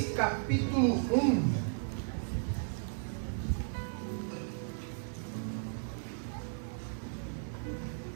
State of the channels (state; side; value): silent; left; 54 dB below the other